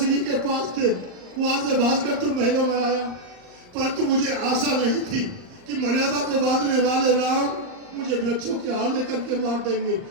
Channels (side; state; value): left; late; 39 ms